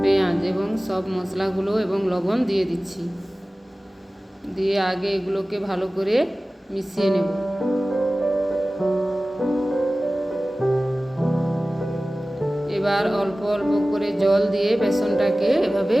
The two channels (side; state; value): both; normal; correlation 0.97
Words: পেঁয়াজ এবং সব মশলাগুলো এবং লবণ দিয়ে দিচ্ছি। দিয়ে আগে এগুলোকে ভালো করে মিশিয়ে নেব। এবার অল্প অল্প করে জল দিয়ে বেসনটাকে এভাবে